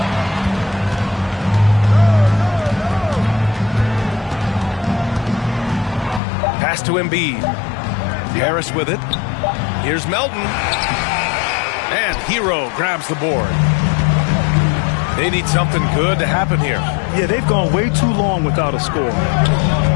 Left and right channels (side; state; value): right; drops out; at 6.2 s